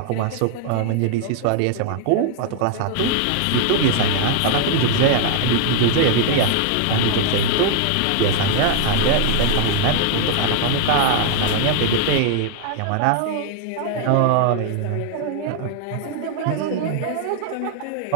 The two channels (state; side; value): different; both; correlation 0.00